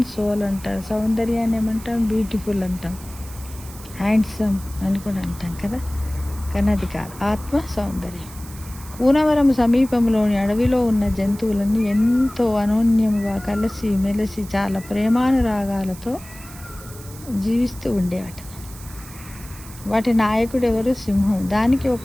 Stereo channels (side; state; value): right; noise; hiss, 18 dB below the sound